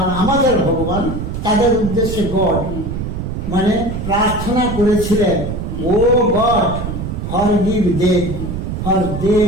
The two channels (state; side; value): noise; right; rumble, 5 dB below the sound